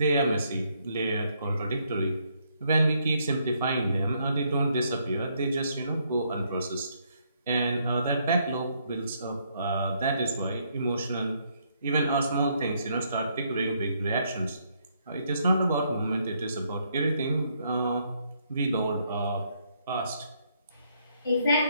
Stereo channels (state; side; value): inverted; both; correlation -0.72